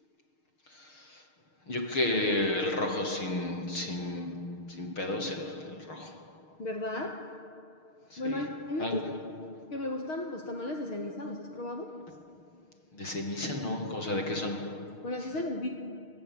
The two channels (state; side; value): late; right; 6.5 ms